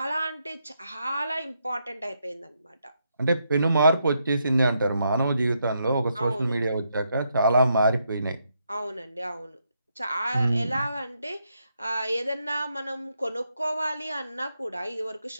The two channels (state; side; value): inverted; both; correlation -0.80